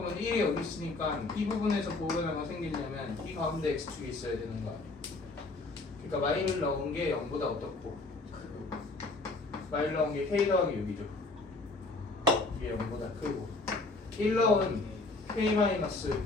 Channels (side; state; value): right; quieter; 3.3 dB